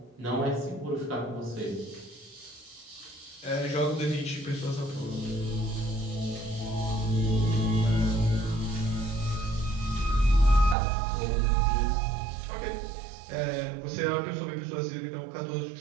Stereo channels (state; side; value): drops out; left; at 10.8 s